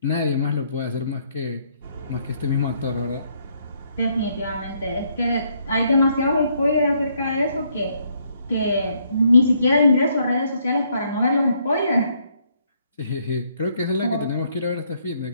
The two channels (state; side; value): inverted; both; correlation -0.71